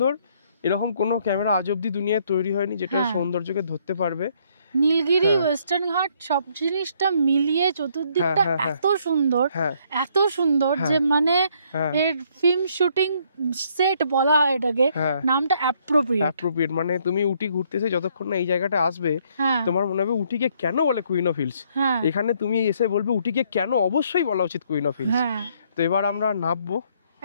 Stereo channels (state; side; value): inverted; both; correlation -0.68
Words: এরকম কোনো ক্যামেরা আজ অব্দি দুনিয়ায় তৈরি হয়নি যেটা সৌন্দর্যকে ধরতে পারবে। নীলগিরি, ওয়েস্টার্ন ঘাট সব জিনিসটা মিলিয়ে চতুর্দিকটা এত সুন্দর, এত সুন্দর যে মানে এর ফিল্ম শুটিং সেট বলা হয় এটাকে, নামটা অ্যাপ্রোপ্রিয়েট। মানে তুমি উটি ঘুরতেছে যতক্ষণ না এই জায়গাটা আসবে, তোমার মনে হবে উটিকে কেন বলে কুইন অফ হিলস। এখানে তুমি এসে বলবে উটিকে কেন অবশ্যই বলা উচিত কুইন অফ হিলস। তো এবার আমরা নামবো,